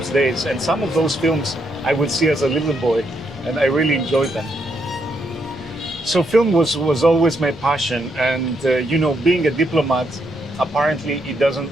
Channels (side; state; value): both; normal; correlation 0.77